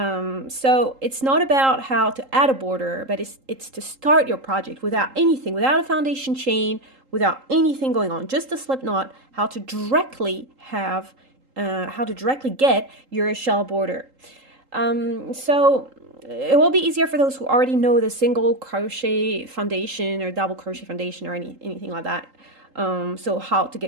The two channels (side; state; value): left; late; 3.8 ms